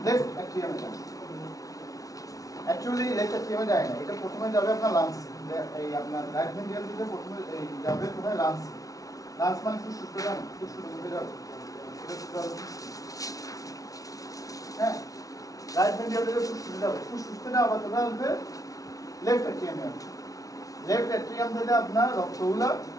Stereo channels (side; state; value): right; late; 0.17 ms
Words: লেফট অ্যাট্রিয়ামে যাবে। অ্যাকচুয়ালি লেফট অ্যাট্রিয়ামে যায় না, এটা প্রথমে যাবে আপনার লাংস, এই আপনার রাইট ভেন্ট্রিকল থেকে প্রথমে এই যাবে কোথায়, লাংস। লাংস মানে ফুসফুসে যাবে, ফুসফুসের মধ্যে যাবে, হ্যাঁ, রাইট ভেন্ট্রিকল থেকে ফুসফুসে যাবে, ফুসফুস থেকে আবার কোথায় আসবে, লেফট অ্যাট্রিয়ামে আসবে। লেফট অ্যাট্রিয়াম থেকে আপনার রক্তগুলো